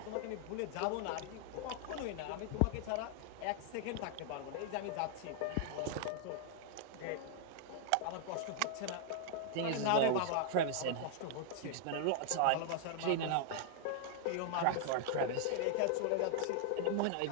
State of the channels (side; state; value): both; different; correlation 0.00